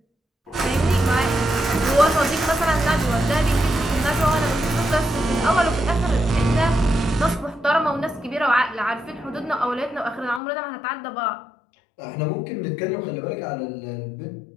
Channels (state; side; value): drops out; right; at 10.4 s